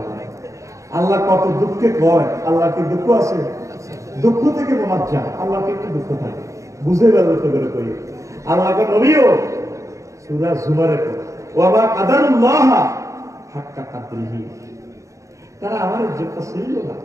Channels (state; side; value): late; left; 0.15 ms